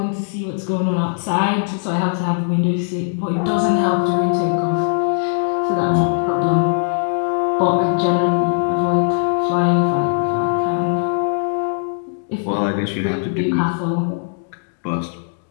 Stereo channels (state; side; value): silent; right; digital silence